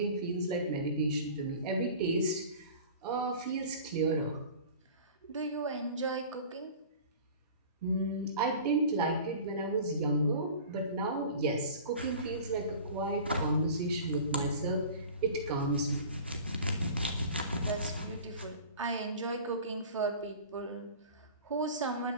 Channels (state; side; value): inverted; both; correlation -0.40